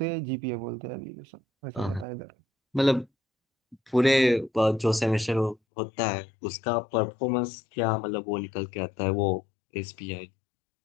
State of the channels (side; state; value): right; drops out; at 5.6 s